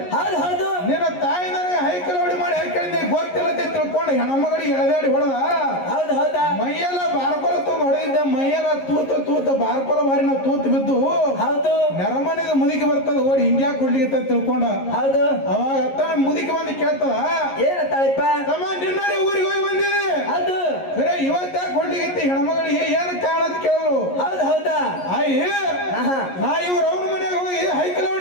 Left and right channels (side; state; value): right; late; 11 ms